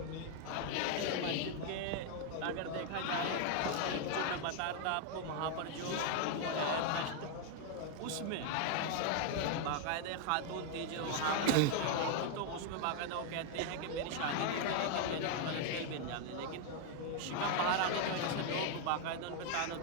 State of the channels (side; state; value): both; different; correlation 0.00